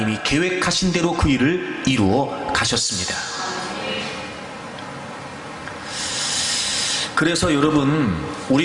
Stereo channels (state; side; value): identical; both; correlation 1.00